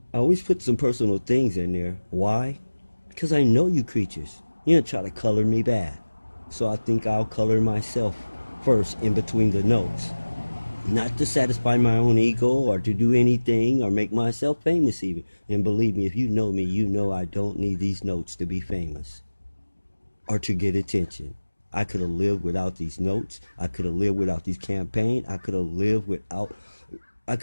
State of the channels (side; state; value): both; inverted; correlation -1.00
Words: I always put some personal things in there. Why? Because I know you creatures. You don't try to color me bad. So I think I'll color myself first in between the notes. Not to satisfy my own ego or to do anything or make myself famous even. And believe me, if you know me, you know I don't need these notes to be famous or to get attention. I could have lived without these notes. I could have lived without these campaigns. I could have lived